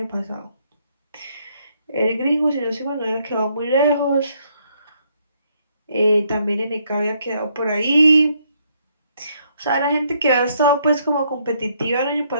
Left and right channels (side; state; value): both; inverted; correlation -0.71